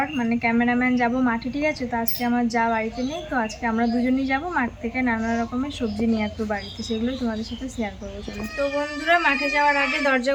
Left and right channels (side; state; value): both; identical; correlation 1.00